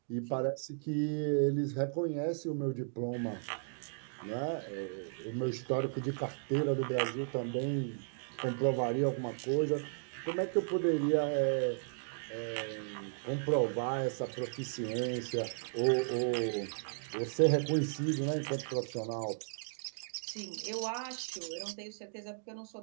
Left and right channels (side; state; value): left; silent; digital silence